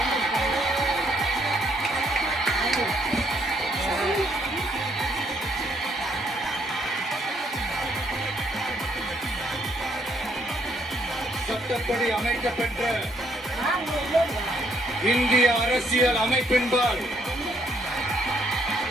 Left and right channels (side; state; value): both; normal; correlation 0.70